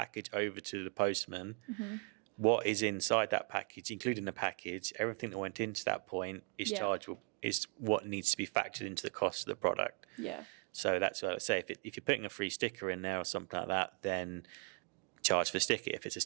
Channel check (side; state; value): left; quieter; 38.1 dB